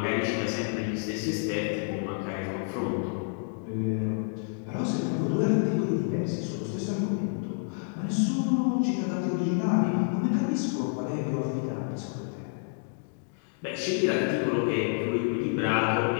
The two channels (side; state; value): right; silent; 58 dB below the other